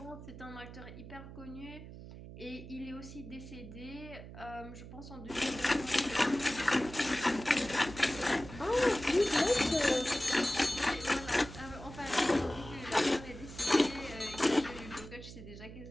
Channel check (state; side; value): noise; right; hum, 13 dB below the sound